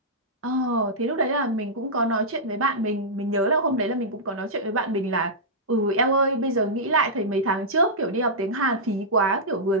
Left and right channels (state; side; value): normal; both; correlation -0.11